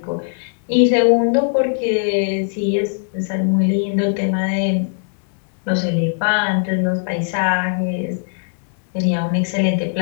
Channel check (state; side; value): silent; right; 66 dB below the other